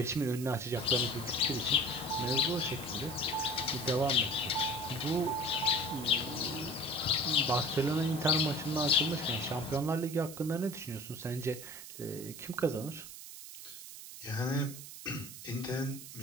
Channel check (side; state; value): right; noise; hiss, 12 dB below the sound